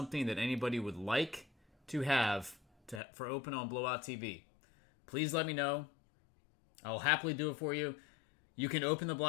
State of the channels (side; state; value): right; drops out; at 3.0 s